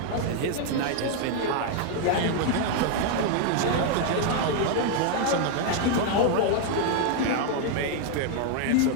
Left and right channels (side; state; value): both; different; correlation 0.00